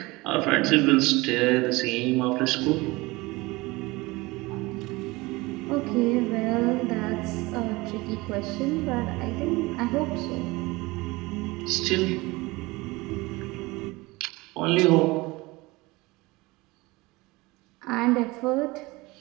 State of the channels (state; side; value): quieter; left; 22.3 dB